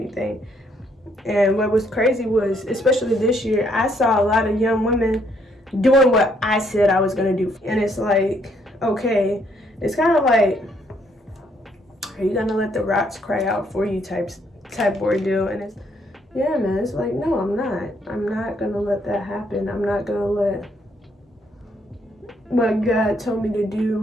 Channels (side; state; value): both; normal; correlation 0.70